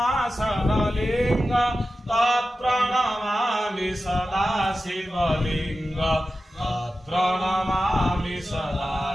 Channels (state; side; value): normal; both; correlation 0.93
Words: तत्प्रणमामि सदा शिवलिङ्ग तत्प्रणमामि सदा